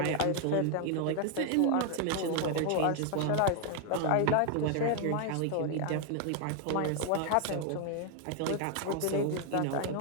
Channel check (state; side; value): different; both; correlation 0.00